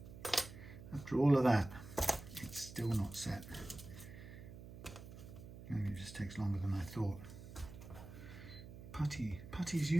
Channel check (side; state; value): right; noise; hum, 14 dB below the sound